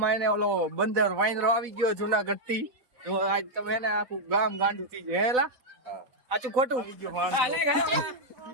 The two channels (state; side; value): late; left; 4.0 ms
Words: એને ઓલો બંદર વાંદરો આવી ગયો જુનાગઢ થી. તો આજ તમે એને આખું ગામ ગાંડું થઈ જાય હેલા. આચું ખોટું